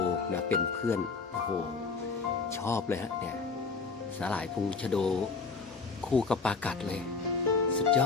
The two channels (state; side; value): quieter; right; 4.6 dB